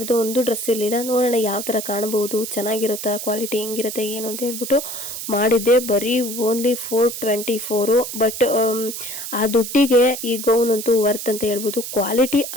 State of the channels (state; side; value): noise; right; hiss, 7 dB below the sound